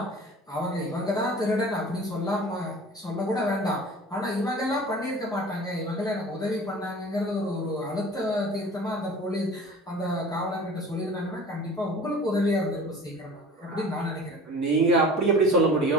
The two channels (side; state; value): both; normal; correlation 0.42